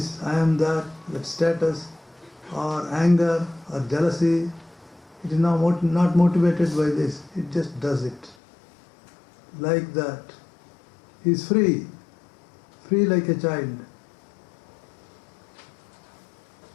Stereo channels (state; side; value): drops out; right; at 8.3 s